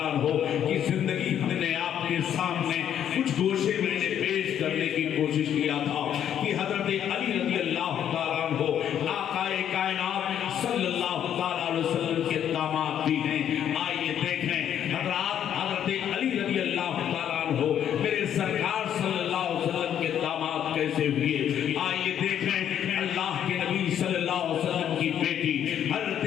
عنہ کی زندگی ہم نے آپ کے سامنے کچھ گوشے میں نے پیش کرنے کی کوشش کیا تھا کہ حضرت علی رضی اللہ تعالیٰ عنہ آقا کائنات صلی اللہ تعالیٰ علیہ وسلم کے داماد بھی ہیں. آئیے دیکھیں حضرت علی رضی اللہ تعالیٰ عنہ میرے سرکار صلی اللہ علیہ وسلم کے داماد کیسے ہوئے. آئیے دیکھیں اللہ کے نبی صلی اللہ علیہ وسلم کی بیٹی حضرت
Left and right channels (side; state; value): right; quieter; 9.8 dB